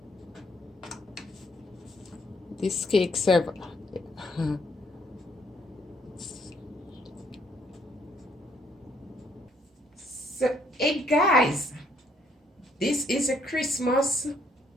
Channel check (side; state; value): both; normal; correlation 0.69